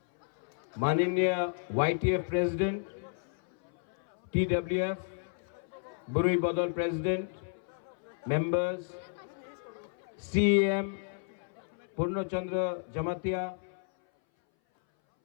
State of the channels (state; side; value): silent; right; 56 dB below the other